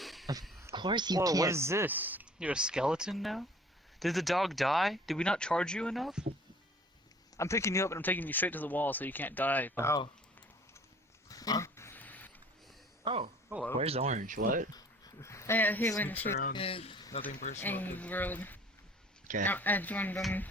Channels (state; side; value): normal; both; correlation 0.51